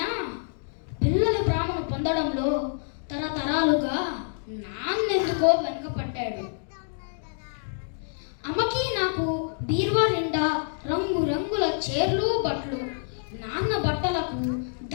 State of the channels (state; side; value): silent; right; digital silence